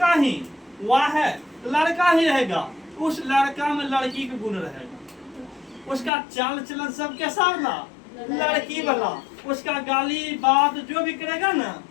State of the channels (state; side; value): drops out; right; at 6.1 s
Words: ही, वाह है तो लड़का ही रहेगा। उस लड़का में लड़की के गुण रहेगा, उसका चाल चलन सब कैसा ना लड़की वाला, उसका गाली बात जो भी करेगा ना